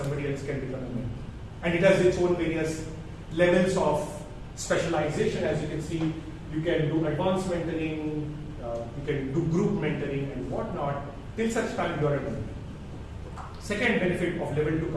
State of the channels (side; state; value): both; identical; correlation 1.00